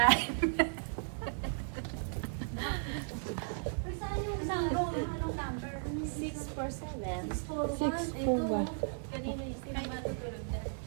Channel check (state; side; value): silent; left; digital silence